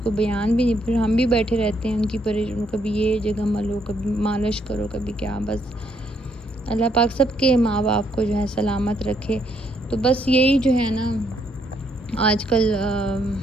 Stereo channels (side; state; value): both; normal; correlation 0.73